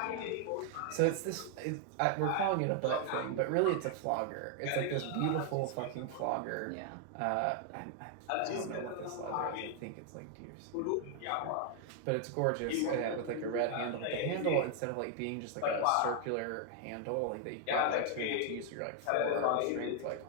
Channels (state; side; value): different; both; correlation 0.00